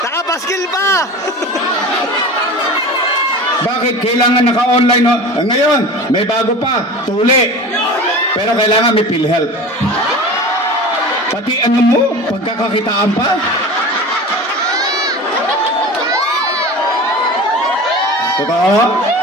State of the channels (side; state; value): both; normal; correlation 0.34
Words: Nakapaskil pa! Bakit? Kailangan naka-online, no? Ngayon, may bago pa, tuli. Pero kailangan may PhilHealth. Pati ano mo, pagkakakitaan pa. Totoo?